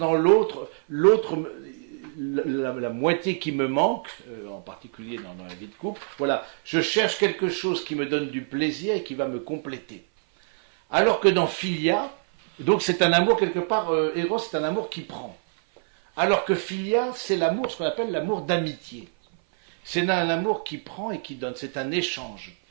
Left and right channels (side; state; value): left; silent; 57 dB below the other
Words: l'autre, la moitié qui me manque, en particulier dans la vie de couple, voilà, je cherche quelque chose qui me donne du plaisir et qui va me compléter. Alors que dans philia, donc c'est un amour quelque part, Eros c'est un amour qui prend. Alors que philia, c'est l'amour, ce qu'on appelle l'amour d'amitié. C'est un amour qui prend et qui donne, c'est un échange.